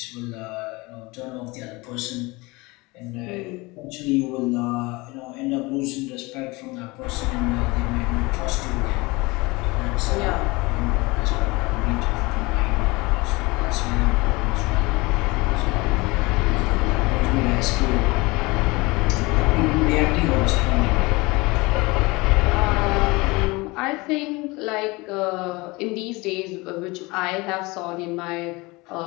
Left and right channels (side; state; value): right; quieter; 23.8 dB